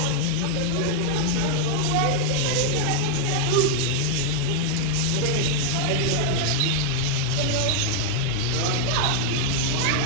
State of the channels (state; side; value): different; both; correlation 0.00